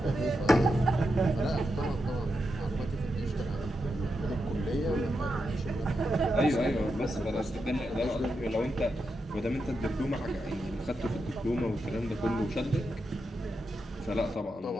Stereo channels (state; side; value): normal; both; correlation 0.86